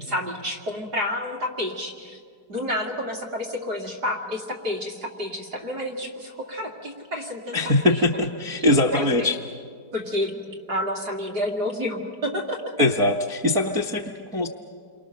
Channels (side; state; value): left; late; 4.5 ms